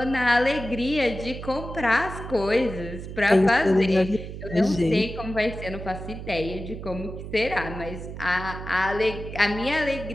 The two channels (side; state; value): right; noise; hum, 9 dB below the sound